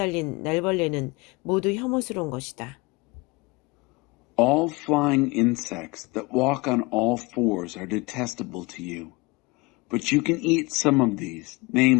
날벌레는 모두 혐오스러운 것이다. All flying insects that walk on all fours are detestable to you. But you can eat some of these,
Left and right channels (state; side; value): quieter; right; 25.1 dB